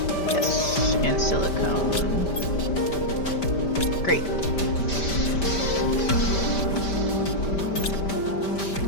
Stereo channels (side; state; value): right; late; 5.1 ms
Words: Yes. And silicone. Great.